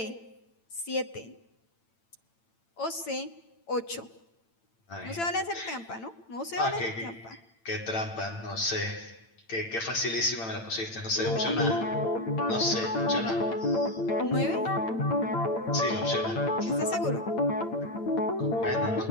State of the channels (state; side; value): late; right; 8.9 ms